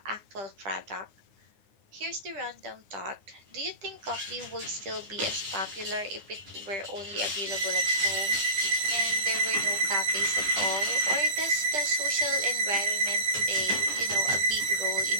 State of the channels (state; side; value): late; left; 9.7 ms